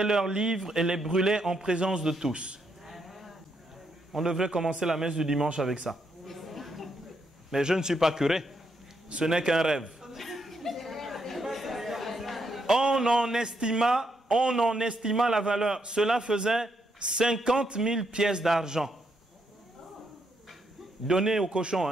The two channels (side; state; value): both; normal; correlation 0.78